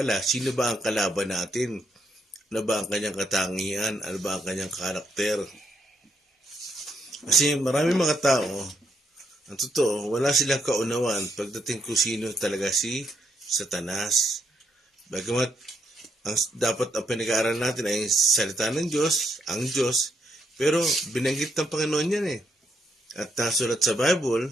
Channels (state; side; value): normal; both; correlation 0.76